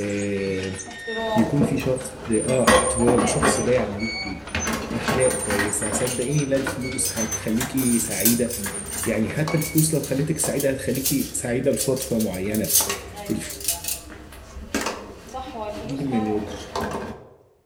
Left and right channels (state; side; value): identical; both; correlation 1.00